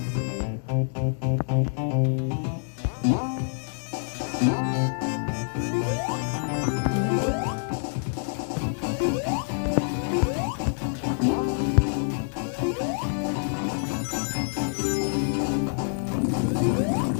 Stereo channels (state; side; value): silent; right; digital silence